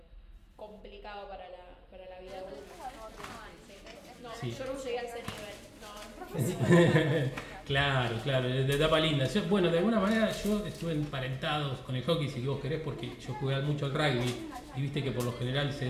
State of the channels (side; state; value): both; identical; correlation 1.00